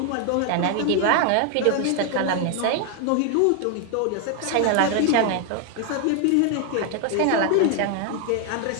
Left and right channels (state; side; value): different; both; correlation 0.00